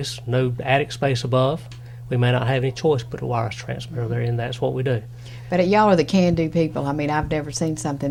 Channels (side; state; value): both; identical; correlation 1.00